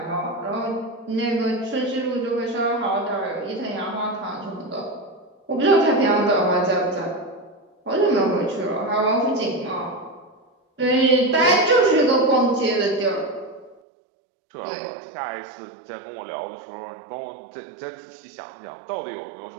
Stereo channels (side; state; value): left; drops out; at 13.8 s